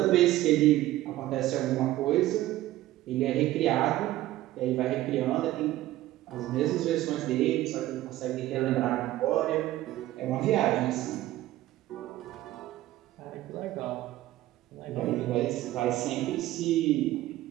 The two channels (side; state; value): left; quieter; 15.4 dB